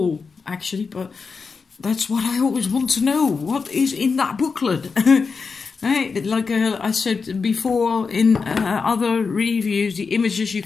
actually, but that's what I always want to know. What is in that booklet? Right? Like I said before in other reviews, the images you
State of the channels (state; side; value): quieter; right; 5.0 dB